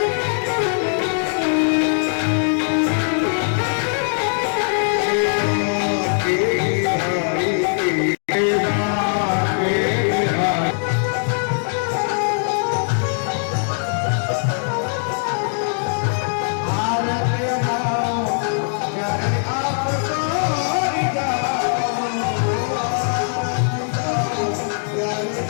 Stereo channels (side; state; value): right; silent; digital silence